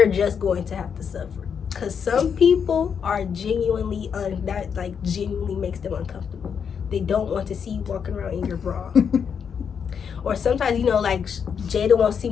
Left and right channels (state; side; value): quieter; right; 7.0 dB